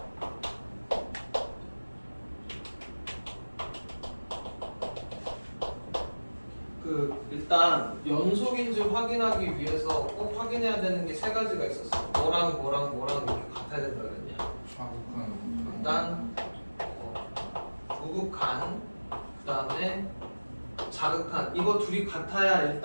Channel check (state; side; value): inverted; both; correlation -1.00